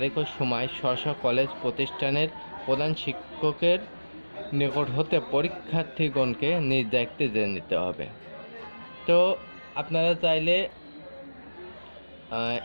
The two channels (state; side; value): inverted; both; correlation -1.00